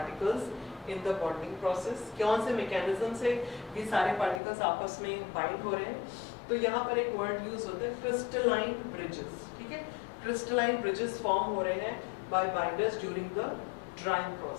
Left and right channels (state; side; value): drops out; right; at 4.4 s